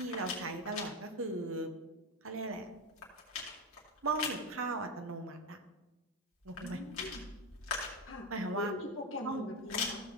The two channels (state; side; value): normal; both; correlation 0.13